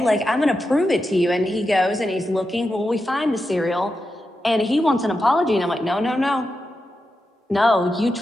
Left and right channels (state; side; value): normal; both; correlation 0.89